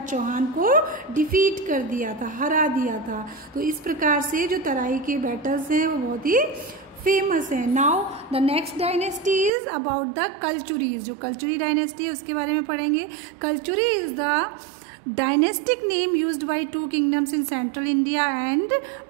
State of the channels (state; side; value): drops out; left; at 9.5 s